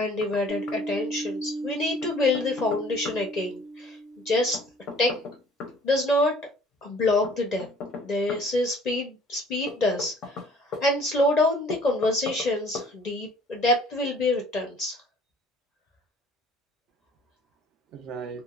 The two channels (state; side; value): normal; both; correlation 0.54